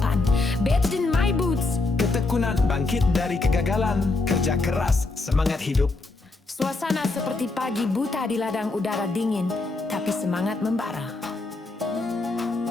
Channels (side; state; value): right; quieter; 3.4 dB